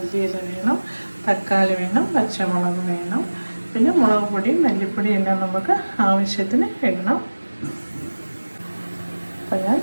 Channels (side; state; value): both; inverted; correlation -1.00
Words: വേണം, തക്കാളി വേണം, പച്ചമുളക് വേണം, പിന്നെ മുളക് പൊടി, മല്ലിപ്പൊടി എല്ലാം നമുക്ക് ആവശ്യത്തിന് ഇടണം. അപ്പം ഞാൻ